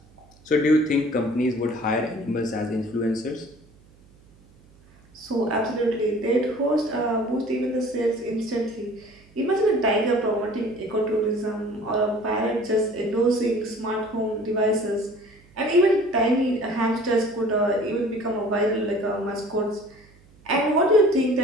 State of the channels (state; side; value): noise; right; hum, 28 dB below the sound